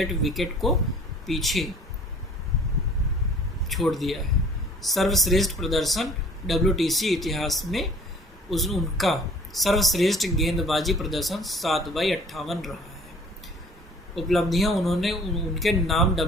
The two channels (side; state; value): both; normal; correlation 0.51